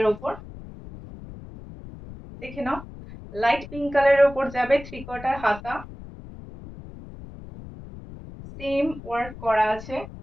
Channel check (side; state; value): left; noise; rumble, 15 dB below the sound